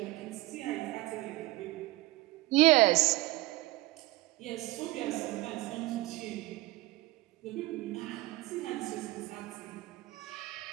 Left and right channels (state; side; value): quieter; left; 19.4 dB